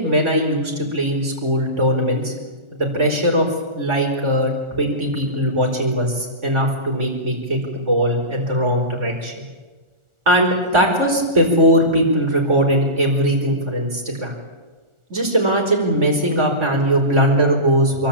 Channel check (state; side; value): late; left; 1.4 ms